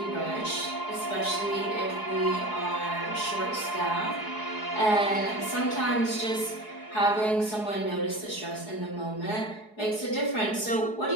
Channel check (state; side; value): late; right; 4.7 ms